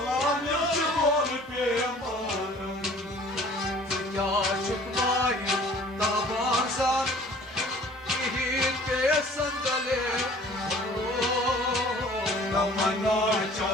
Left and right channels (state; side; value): normal; both; correlation 0.51